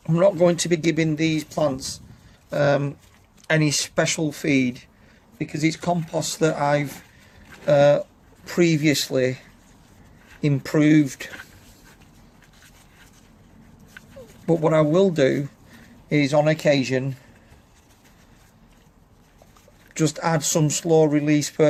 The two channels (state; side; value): identical; both; correlation 1.00